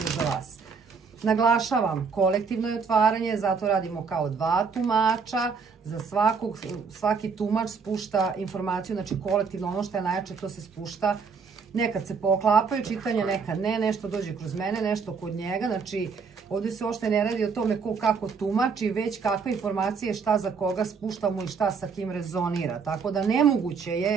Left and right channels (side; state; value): left; quieter; 5.4 dB